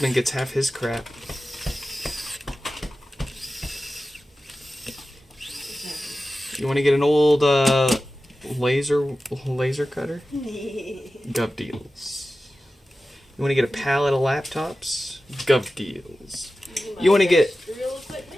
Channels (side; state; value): both; normal; correlation 0.94